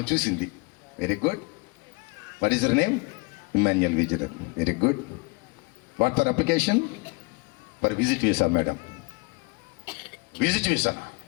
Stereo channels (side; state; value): right; quieter; 28.1 dB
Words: చూసింది, very good, what is your name? Immanuel visitor. Very good, what for application? For visit visa madam. Visit visa?